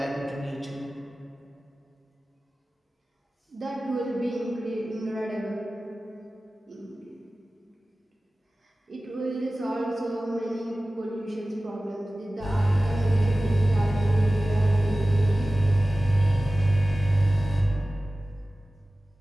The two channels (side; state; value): both; normal; correlation 0.96